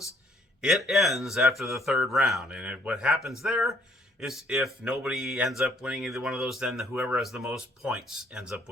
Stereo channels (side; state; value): both; normal; correlation 0.63